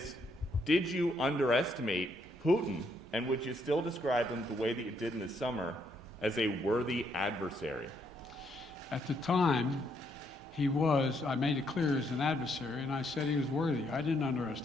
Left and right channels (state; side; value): normal; both; correlation 0.73